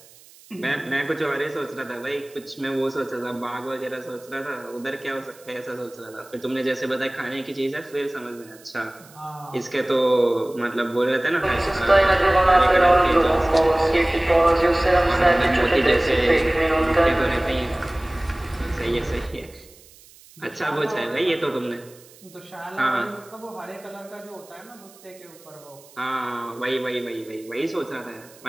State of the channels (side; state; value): right; noise; hiss, 24 dB below the sound